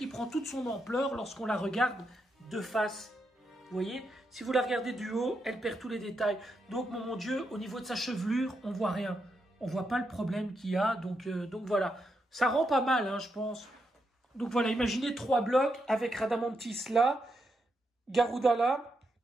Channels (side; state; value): both; normal; correlation 0.83